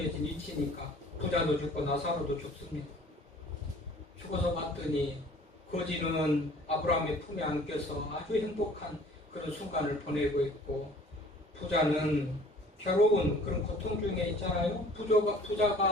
이치니까 부자도 죽고 나사로도 죽습니다. 죽어서 봤더니 거지는 아브라함의 품에 안겨서 아주 행복한 그런 순간을 보내고 있고 부자는 괴로운 그런 고통 중에 있잖아요.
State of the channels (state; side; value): normal; both; correlation 0.51